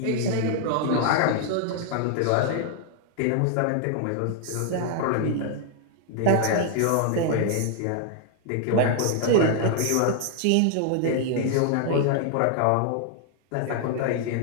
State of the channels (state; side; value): different; both; correlation 0.00